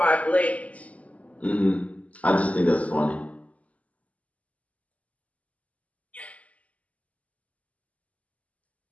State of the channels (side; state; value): right; late; 0.070 ms